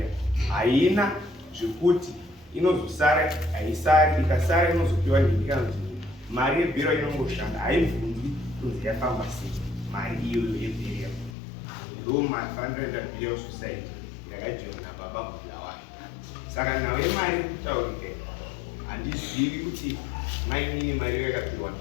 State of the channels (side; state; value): right; drops out; at 11.4 s